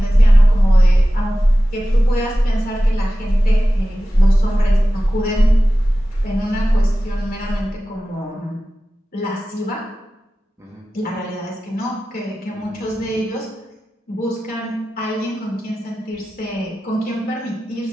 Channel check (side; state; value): both; normal; correlation 0.95